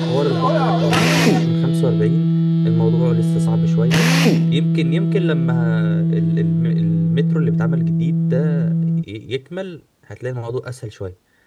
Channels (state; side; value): identical; both; correlation 1.00